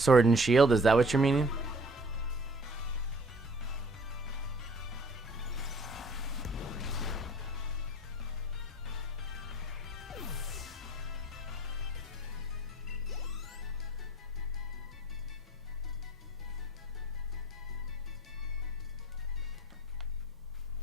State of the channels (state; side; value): normal; both; correlation 0.52